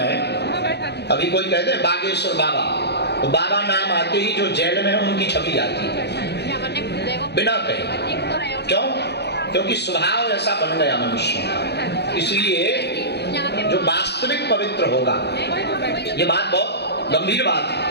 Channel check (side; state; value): right; late; 0.49 ms